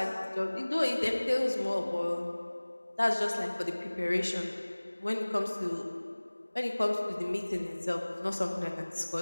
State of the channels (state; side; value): inverted; both; correlation -1.00